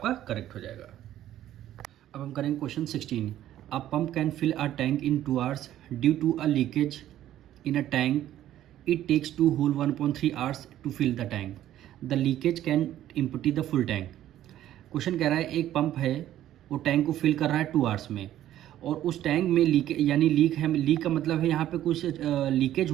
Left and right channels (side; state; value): left; quieter; 12.6 dB